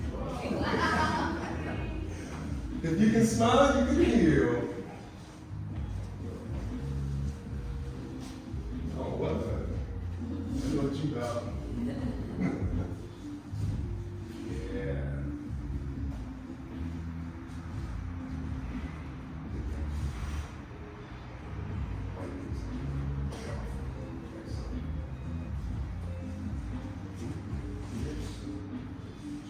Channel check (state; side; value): identical; both; correlation 1.00